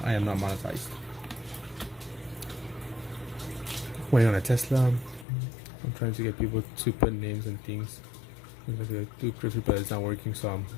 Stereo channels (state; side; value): drops out; right; at 5.2 s